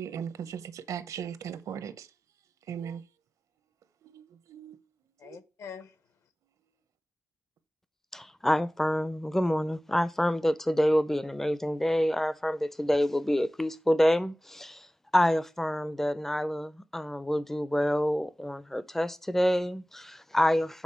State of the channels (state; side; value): normal; both; correlation 0.97